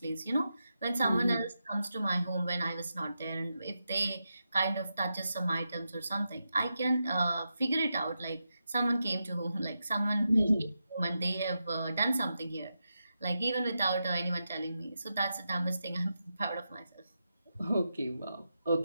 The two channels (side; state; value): both; inverted; correlation -0.88